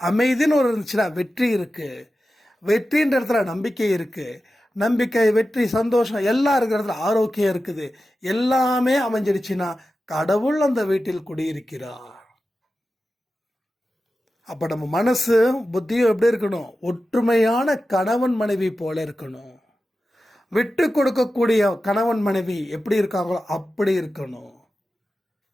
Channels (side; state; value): both; normal; correlation 0.93